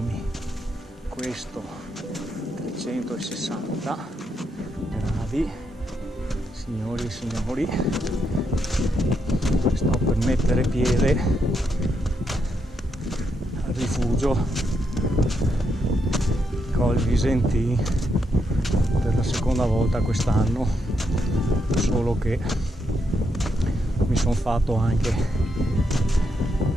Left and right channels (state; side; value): normal; both; correlation 0.80